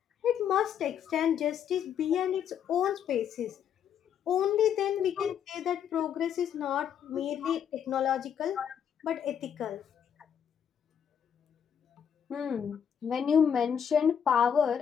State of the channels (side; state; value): right; quieter; 8.4 dB